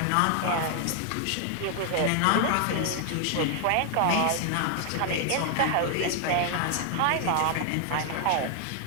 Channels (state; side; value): different; both; correlation 0.00